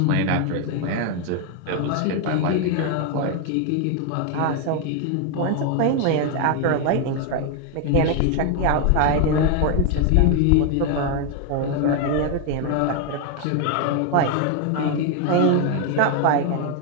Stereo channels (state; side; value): different; both; correlation 0.01